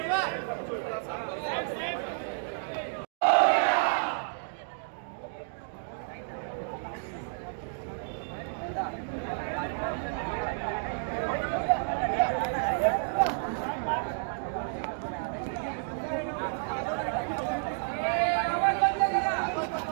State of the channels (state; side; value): silent; left; digital silence